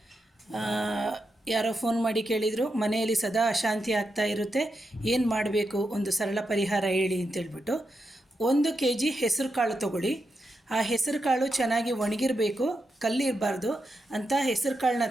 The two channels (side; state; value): both; normal; correlation 0.86